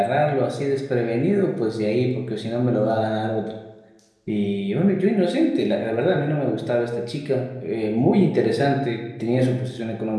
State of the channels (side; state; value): both; identical; correlation 1.00